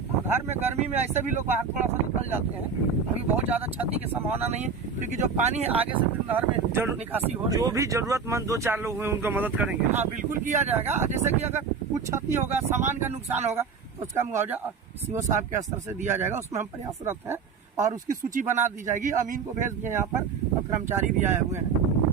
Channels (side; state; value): left; quieter; 5.7 dB